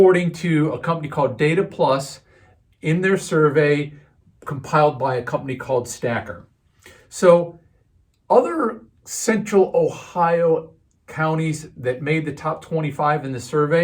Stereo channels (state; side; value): identical; both; correlation 1.00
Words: to a company called Data Plus in their survey compiled by a company called Stacker. So other central Ohio counties that made the top 25 in the